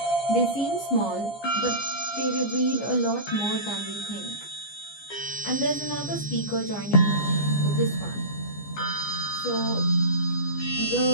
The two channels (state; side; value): late; right; 14 ms